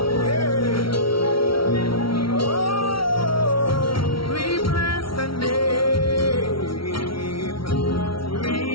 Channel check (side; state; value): right; late; 0.74 ms